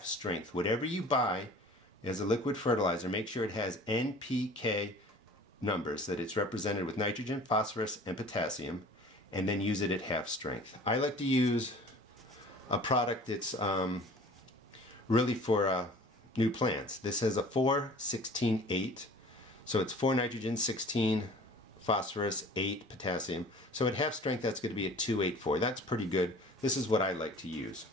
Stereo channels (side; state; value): both; normal; correlation 0.46